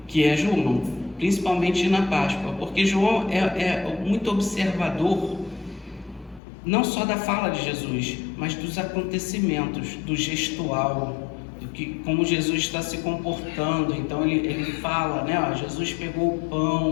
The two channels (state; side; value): drops out; right; at 6.4 s